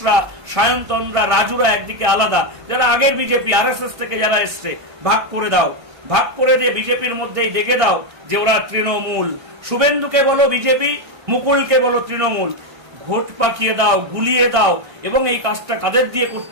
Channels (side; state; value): left; late; 1.6 ms